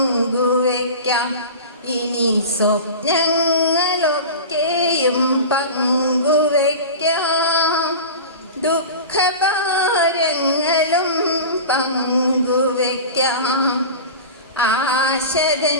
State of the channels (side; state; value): both; inverted; correlation -0.30